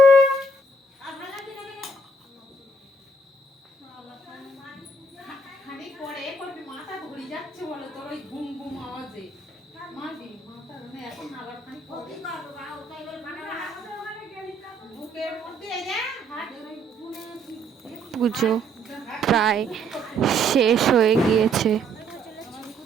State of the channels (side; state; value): both; normal; correlation 0.67